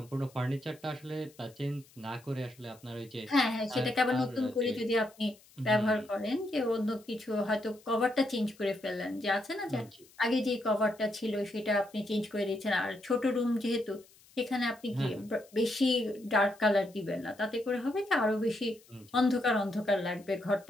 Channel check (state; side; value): noise; left; hiss, 27 dB below the sound